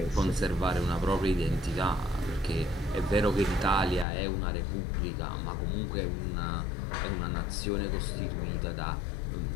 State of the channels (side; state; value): right; drops out; at 4.0 s